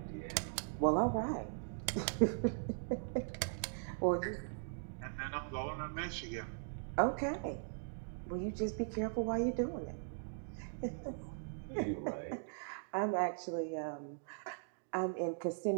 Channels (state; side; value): silent; left; digital silence